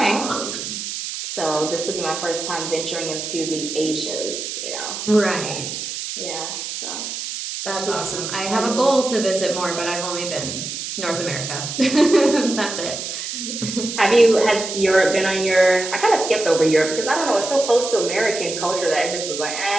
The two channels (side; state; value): right; noise; hiss, 6 dB below the sound